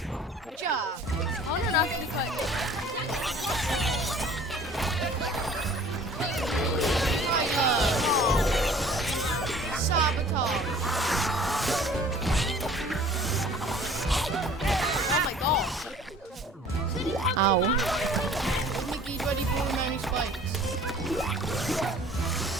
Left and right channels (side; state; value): both; normal; correlation 0.50